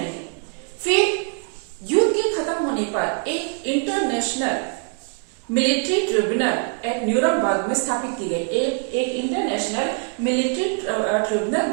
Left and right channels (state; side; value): quieter; left; 37.3 dB